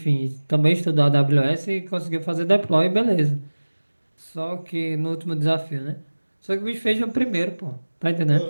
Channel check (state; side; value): inverted; both; correlation -1.00